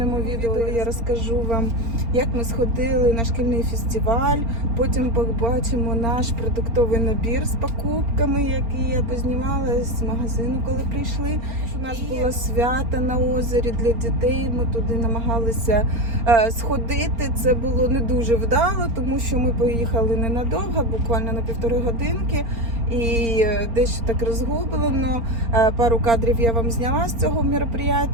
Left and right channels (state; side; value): late; left; 4.3 ms